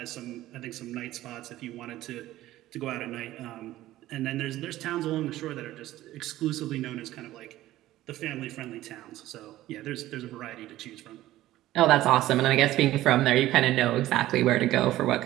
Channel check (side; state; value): left; quieter; 15.2 dB